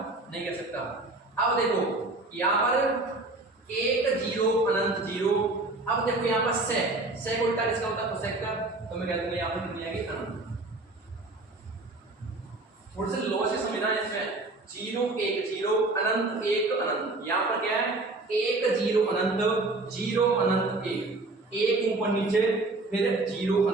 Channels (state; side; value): quieter; left; 3.1 dB